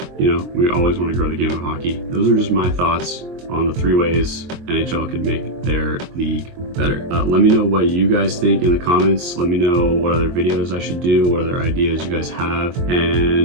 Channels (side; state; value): left; late; 23 ms